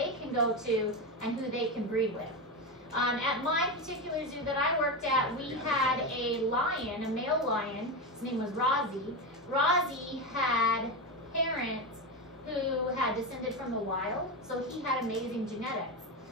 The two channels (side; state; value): both; normal; correlation 0.16